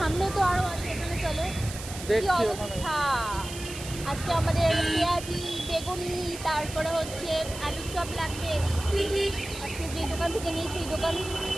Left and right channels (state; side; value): noise; right; hiss, 11 dB below the sound